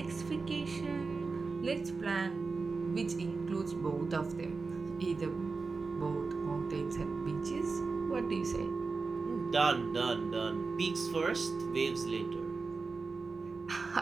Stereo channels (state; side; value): quieter; left; 4.3 dB